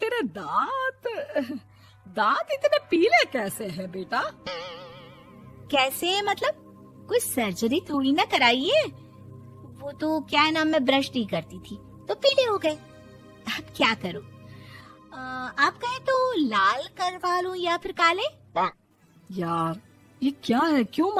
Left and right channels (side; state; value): both; identical; correlation 1.00